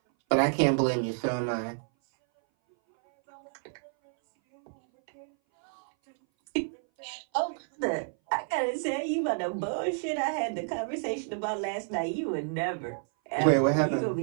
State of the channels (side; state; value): left; silent; 58 dB below the other